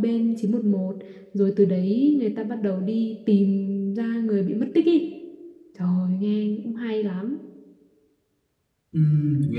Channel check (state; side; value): identical; both; correlation 1.00